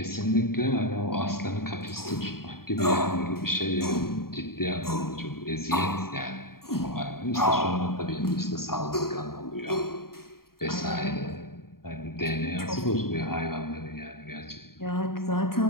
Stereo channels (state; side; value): late; right; 0.93 ms